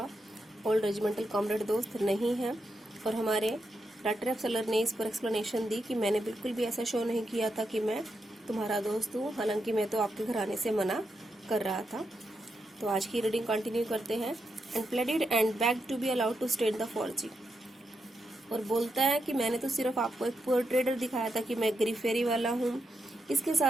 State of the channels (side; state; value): both; normal; correlation 0.84